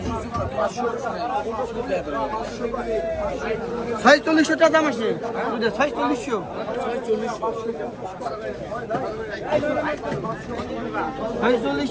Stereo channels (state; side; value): identical; both; correlation 1.00